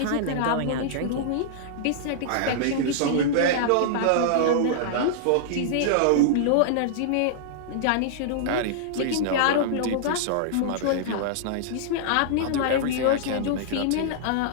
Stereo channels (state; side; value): different; both; correlation -0.01